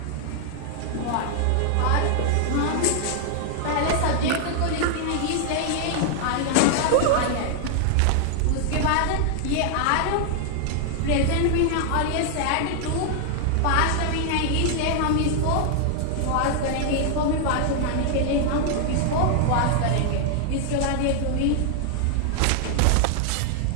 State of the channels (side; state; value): both; different; correlation 0.00